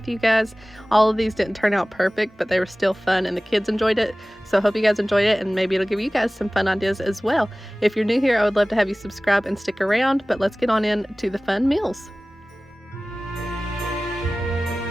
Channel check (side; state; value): both; normal; correlation 0.98